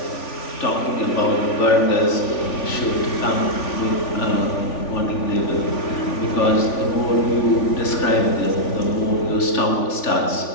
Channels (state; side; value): late; right; 3.5 ms